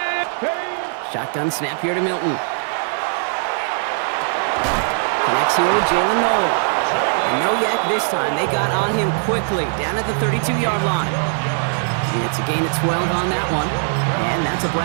Shotgun snap here to Milton. Connects here with Jalen Noel. And no yak this time. They got on him quickly, down at the 32-yard line. And it's a gain of 12 on that one. And that's a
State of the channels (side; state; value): left; silent; digital silence